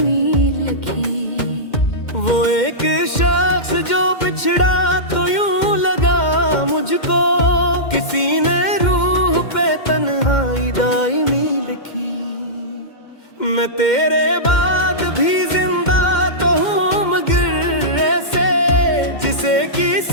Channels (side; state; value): right; late; 2.1 ms